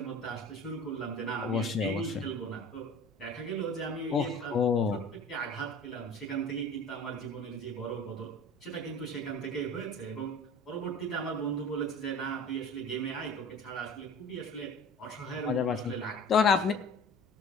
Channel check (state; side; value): normal; both; correlation 0.41